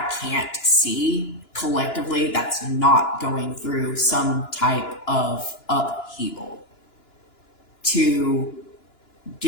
can't see collectively that's not going through some type of upheaval to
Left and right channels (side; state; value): right; late; 2.9 ms